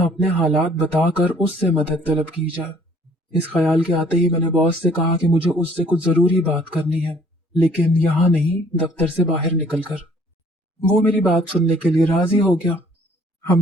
अपने हालात बताकर उससे मदद तलब की जाए। इस ख्याल के आते ही मैंने बॉस से कहा कि मुझे उससे कुछ जरूरी बात करनी है, लेकिन यहाँ नहीं, दफ्तर से बाहर निकलकर। वो मेरी बात सुनने के लिए राजी हो गया।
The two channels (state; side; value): normal; both; correlation 0.58